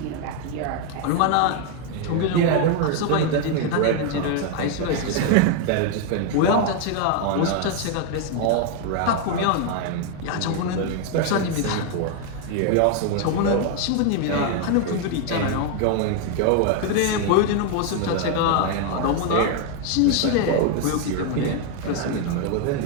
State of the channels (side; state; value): both; different; correlation 0.01